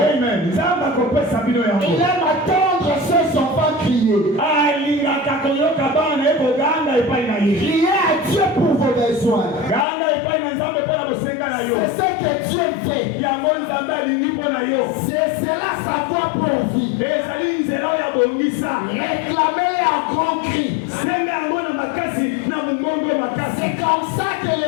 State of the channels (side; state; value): right; drops out; at 9.9 s